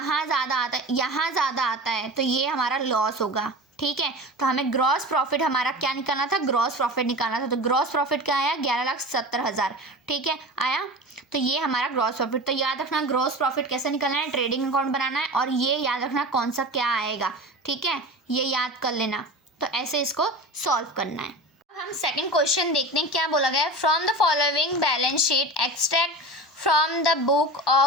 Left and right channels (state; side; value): normal; both; correlation 0.31